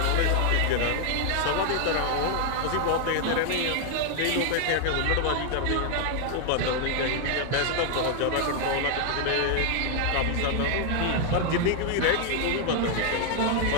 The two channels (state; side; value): different; both; correlation 0.00